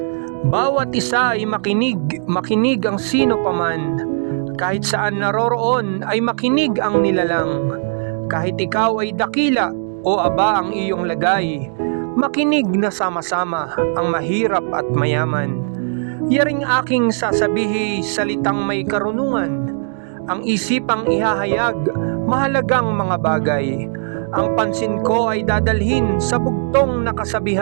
Bawat isa ay makinig ang sino paman. Kahit saan naroroon ay makinig ang nilalang. Kahit ikaw ay dakila o aba ang iyong lagay, makinig na sama-sama ang mahirap at mayaman. Yaring aking sasabihi salitang may karunungan. Ang isipang ihahayag, mahalagang mga bagay. Ang pansin ko ay dadalhin sa bugtong na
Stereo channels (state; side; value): silent; left; digital silence